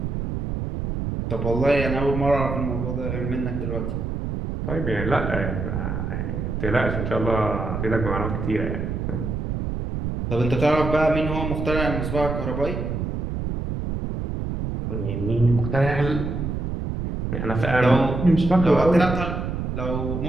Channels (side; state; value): right; noise; rumble, 3 dB below the sound